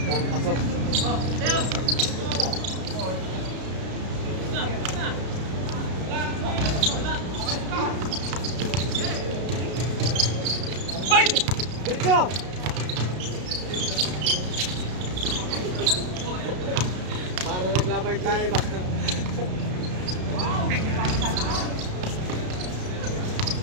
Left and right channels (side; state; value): left; late; 33 ms